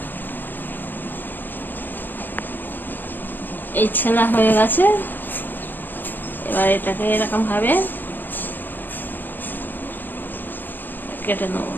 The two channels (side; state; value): right; late; 0.091 ms